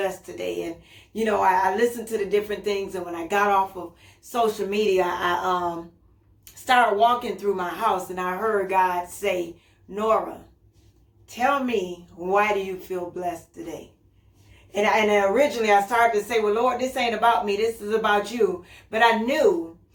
today? And, I listened to the different things. And when I got off of social media, I started walking through my house and I heard God say, Nora, tell me, why do you feel blessed today? And originally I started to say, well, Lord, this ain't about me. This is about you. But I knew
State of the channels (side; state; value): both; identical; correlation 1.00